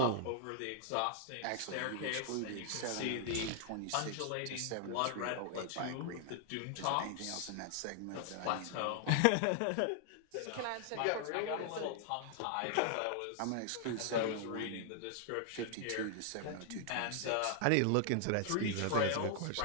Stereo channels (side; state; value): both; different; correlation 0.00